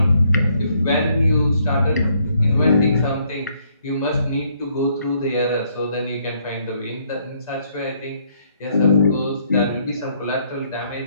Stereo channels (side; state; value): both; inverted; correlation -0.70